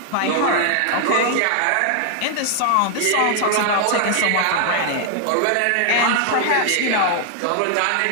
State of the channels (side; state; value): both; different; correlation 0.00